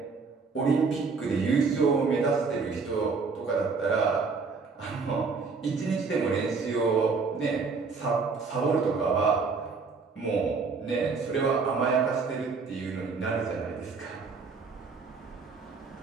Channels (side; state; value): left; quieter; 4.7 dB